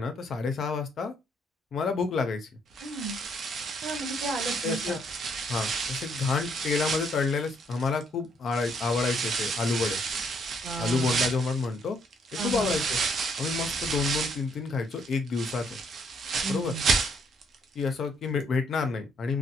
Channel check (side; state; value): both; normal; correlation 0.69